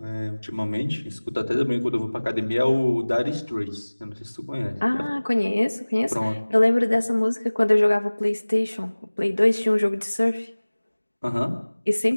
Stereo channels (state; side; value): inverted; both; correlation -1.00